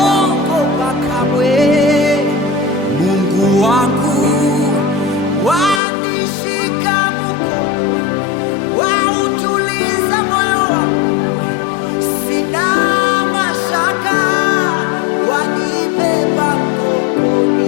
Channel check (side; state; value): right; drops out; at 5.8 s